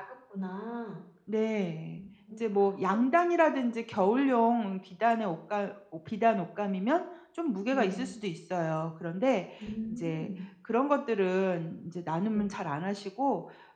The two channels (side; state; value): both; identical; correlation 1.00